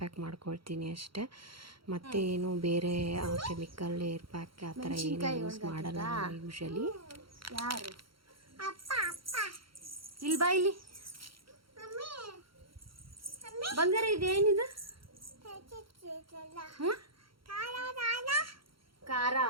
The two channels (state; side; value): late; left; 0.74 ms